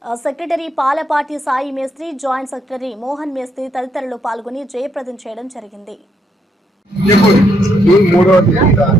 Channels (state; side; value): normal; both; correlation 0.75